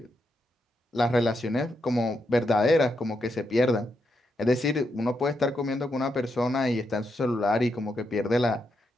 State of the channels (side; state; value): both; normal; correlation 0.82